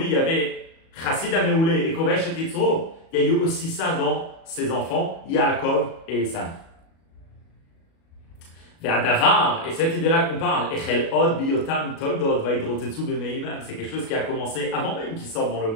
il y avait Chassid Ameoulé et Kovesh et Yitzro, il y a eu aussi ça dans ses enfants, Yaakov et Esav. Et cette idée-là qu'on parle, c'est quelque chose qui a commencé avant même qu'ils sortent dans le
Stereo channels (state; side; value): late; right; 37 ms